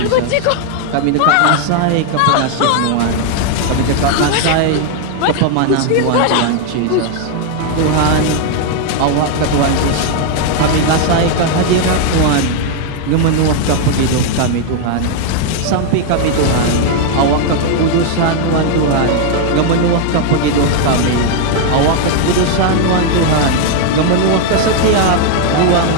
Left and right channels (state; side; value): different; both; correlation 0.00